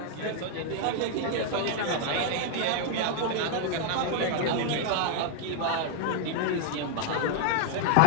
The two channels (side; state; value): both; different; correlation 0.00